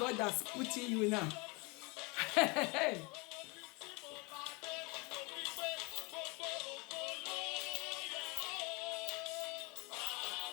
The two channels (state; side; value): quieter; right; 28.1 dB